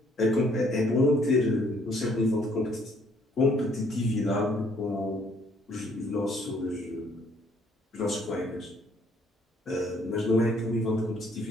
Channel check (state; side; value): normal; both; correlation 0.64